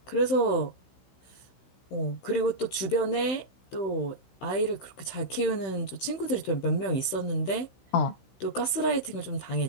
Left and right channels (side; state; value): right; late; 16 ms